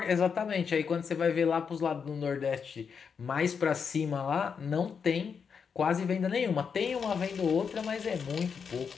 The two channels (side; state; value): right; quieter; 6.3 dB